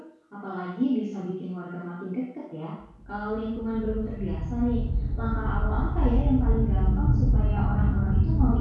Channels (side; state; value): both; identical; correlation 1.00